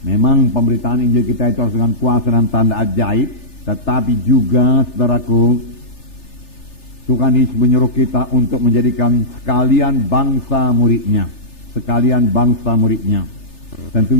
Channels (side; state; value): right; late; 3.3 ms